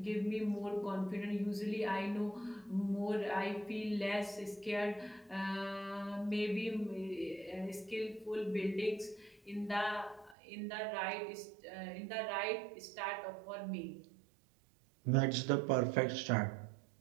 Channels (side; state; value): left; drops out; at 10.4 s